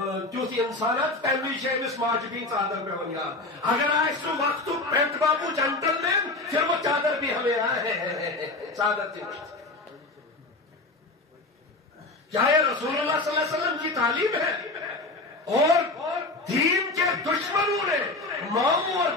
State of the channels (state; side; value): quieter; right; 3.1 dB